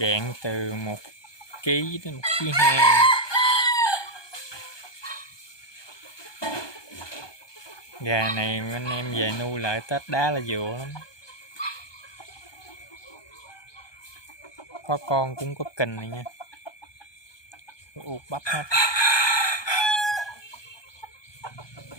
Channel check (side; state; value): right; late; 1.2 ms